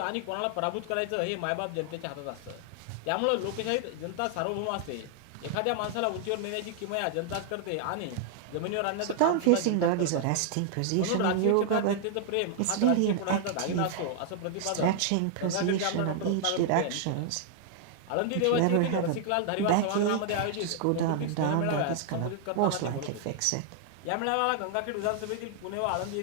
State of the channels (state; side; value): different; both; correlation 0.00